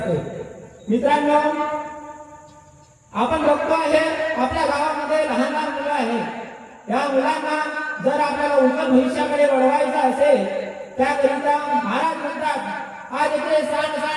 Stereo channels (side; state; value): both; identical; correlation 1.00